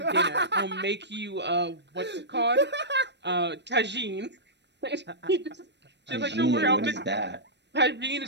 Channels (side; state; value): left; late; 0.50 ms